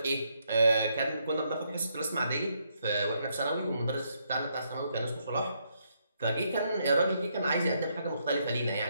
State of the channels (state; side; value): inverted; both; correlation -0.76